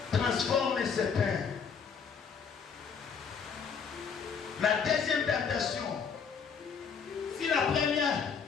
transforme ce pain. La deuxième tentation, si la première,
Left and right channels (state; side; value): quieter; right; 6.3 dB